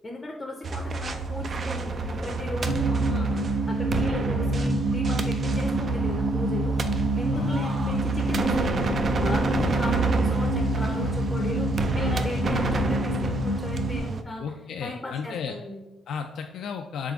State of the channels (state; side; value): normal; both; correlation 0.69